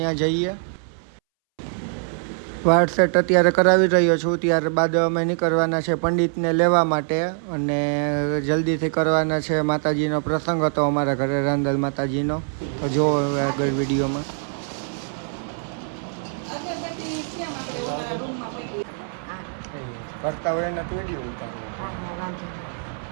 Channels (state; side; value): silent; left; 63 dB below the other